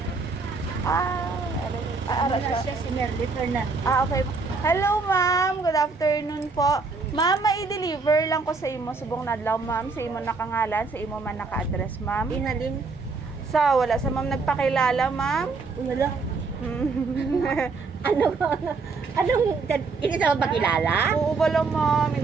Ara siya. Si Merly Fernandez. Okay. Hello ma'am, good afternoon po. Ma'am, mai-deliver lang ko sa imo subong nadlaw ma'am, sa imo nakangalan, sa imo man naka-address ma'am. Inalin. Wala sa ma'am nagpakilala ma'am. Wala. Anong, hindi sa magpakilala? Oo ba lang ma'am,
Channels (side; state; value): left; quieter; 4.3 dB